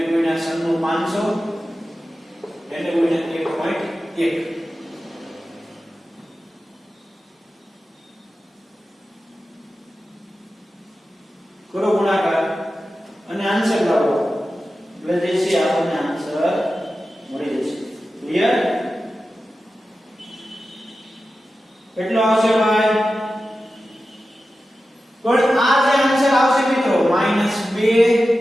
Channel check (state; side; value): normal; both; correlation 0.93